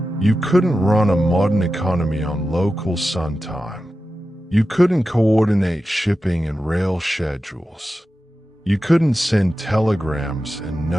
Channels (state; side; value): normal; both; correlation 0.92